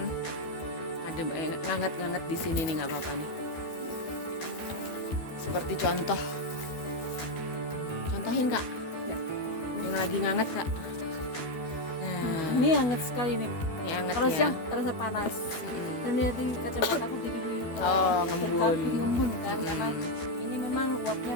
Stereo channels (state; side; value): late; right; 12 ms